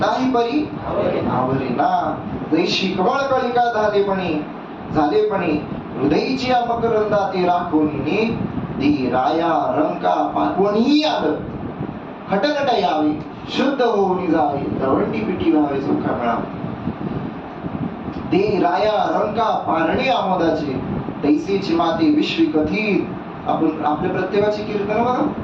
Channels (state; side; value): identical; both; correlation 1.00